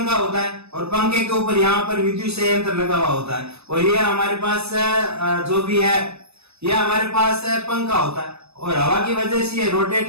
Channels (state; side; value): late; left; 0.79 ms